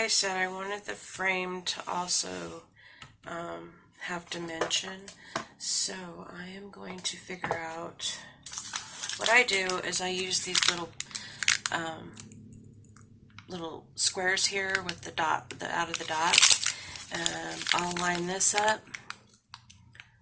said, I wanted the frame to also have dimension. So I am going to figure out, what I do is I use these little little squares here with the dot, out of the dot. I'll line this up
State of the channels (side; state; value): both; identical; correlation 1.00